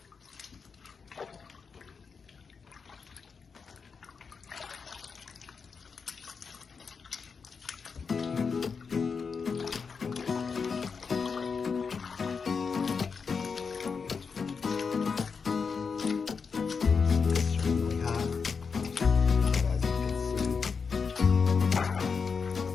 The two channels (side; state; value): right; quieter; 5.5 dB